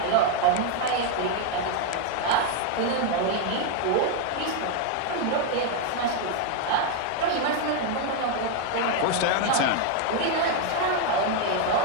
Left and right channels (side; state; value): both; different; correlation 0.01